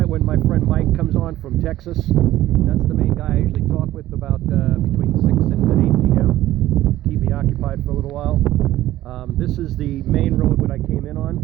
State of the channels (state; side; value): quieter; left; 14.7 dB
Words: when my friend Mike comes on from Texas. That's the main guy I usually talk with about between 6 and 8 p.m. Keep me occupied for a little while. This is the main road that I came in on,